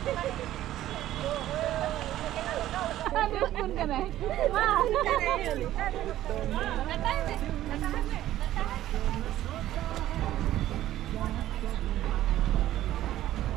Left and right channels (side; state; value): left; quieter; 13.6 dB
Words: Ada pun kan eh. Wah,